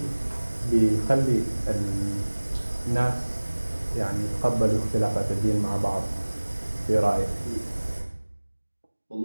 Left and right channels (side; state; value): both; inverted; correlation -1.00